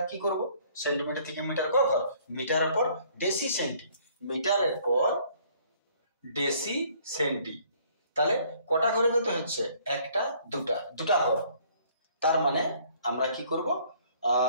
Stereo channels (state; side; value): inverted; both; correlation -0.60